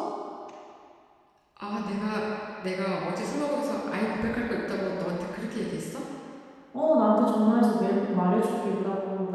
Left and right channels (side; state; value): both; identical; correlation 1.00